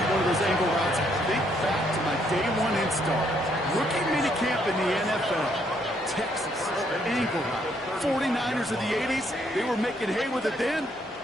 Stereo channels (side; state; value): both; normal; correlation 0.71